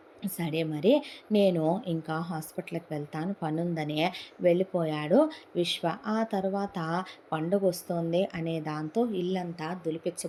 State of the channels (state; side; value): identical; both; correlation 1.00